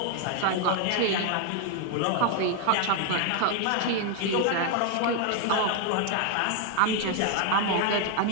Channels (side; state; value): both; different; correlation 0.00